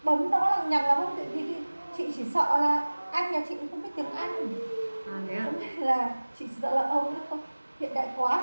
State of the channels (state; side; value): inverted; both; correlation -1.00